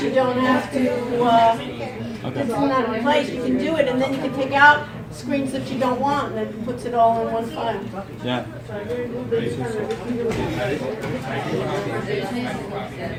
you don't have to, it's not in place, you can do it, and then you can take out screens that you don't want, and it puts it all in one file. Yeah.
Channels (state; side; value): identical; both; correlation 1.00